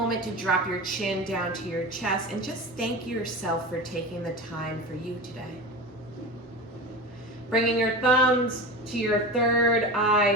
to drop your chin down to your chest and just thank yourself for taking the time for you today. Bringing your thumbs to your third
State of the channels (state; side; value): normal; both; correlation 0.28